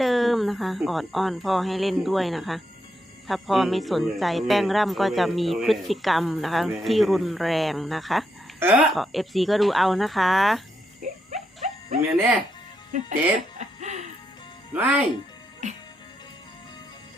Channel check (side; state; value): both; normal; correlation 0.81